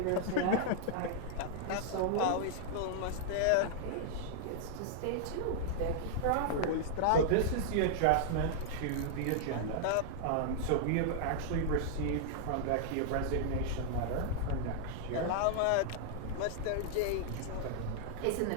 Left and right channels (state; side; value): different; both; correlation -0.01